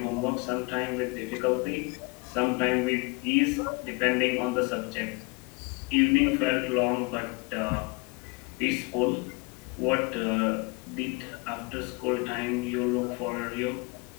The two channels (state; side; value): quieter; right; 29.2 dB